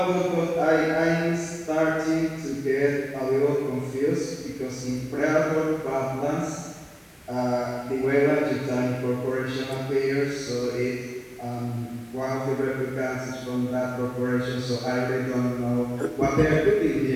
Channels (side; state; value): both; identical; correlation 1.00